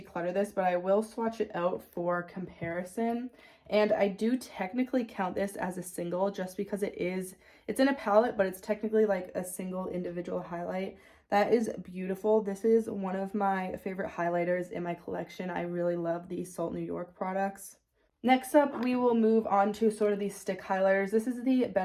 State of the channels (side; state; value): both; identical; correlation 1.00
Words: this, but I will swatch it out for comparison. And I do technically count this as a single just because it's in a palette, but it's technically like a single individual highlight. That is beautiful. This is one of my favorite highlighters in my collection. I really love these Salt New York products. Next up, we will move on to sort of these stick highlighters. This is the